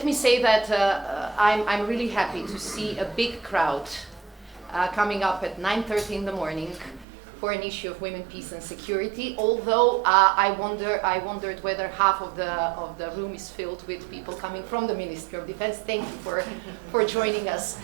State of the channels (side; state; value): left; drops out; at 7.1 s